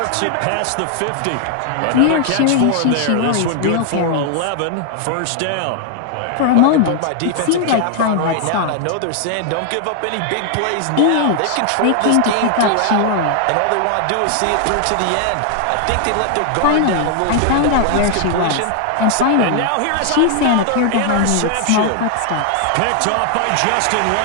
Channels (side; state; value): both; different; correlation 0.00